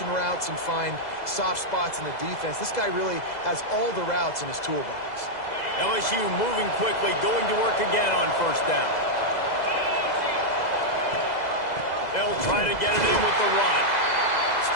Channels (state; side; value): late; right; 2.0 ms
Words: routes and find soft spots in the defense. This guy really has all the routes in his toolbox. LSU moving quickly, going to work again on 1st down. They'll try to get it in with the run.